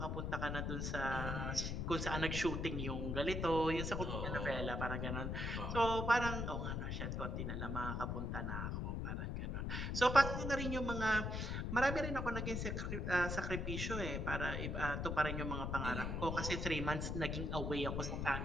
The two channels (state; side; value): noise; left; rumble, 1 dB below the sound